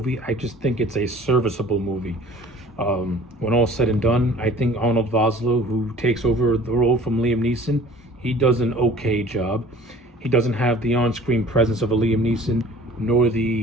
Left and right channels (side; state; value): both; normal; correlation 0.48